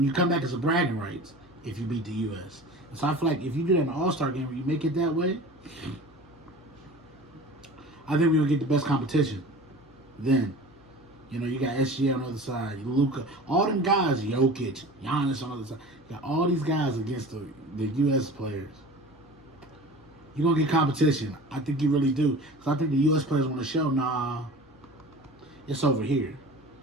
you come back, it's a bragging rights if you beat the U.S. And so I feel like if you do that in an All-Star game where you make it that way, I think we're gonna get the best competition. Then, you got SGA on the other side, Luka, all them guys, Jokic, Giannis on the other side. You got all these guys against the U.S. players. You're going to get competition. I think you really do. Because I think the U.S. players want to show, nah, it's over here.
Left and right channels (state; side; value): normal; both; correlation 0.38